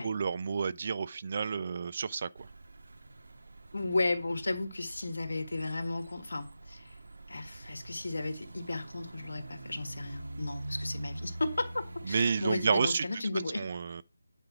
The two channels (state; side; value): inverted; both; correlation -0.89